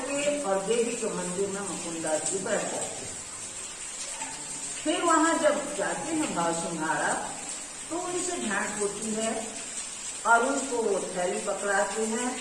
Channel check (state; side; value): identical; both; correlation 1.00